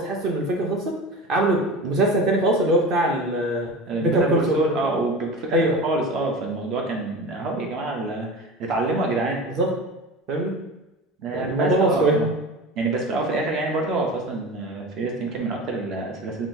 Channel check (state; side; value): normal; both; correlation 0.32